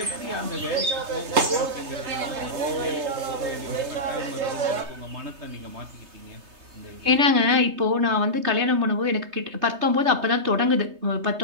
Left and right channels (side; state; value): left; late; 3.3 ms